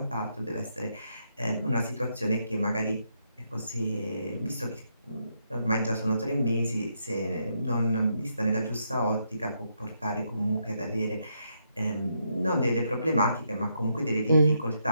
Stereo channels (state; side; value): inverted; both; correlation -0.78